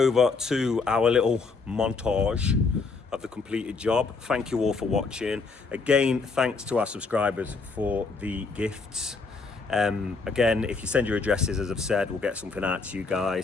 to our little montage of the completed job. Thank you all for watching. Again, thanks to our subscribers for the gifts. Again, if you send your addresses, as I've said, we'll get something out to you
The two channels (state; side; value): quieter; right; 4.3 dB